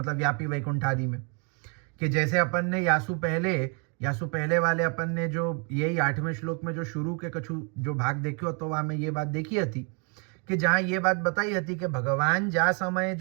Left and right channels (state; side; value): quieter; left; 36.2 dB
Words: व्यापी वैकुंठ आदि में, कि जैसे अपन ने यासु पहले वाले अपन ने जो यही 8वें श्लोक में जो शुरू के कछु जो भाग देखियो तो वहां में ये बात देखी थी कि जहां ये बात बताई थी कि भगवान जा समय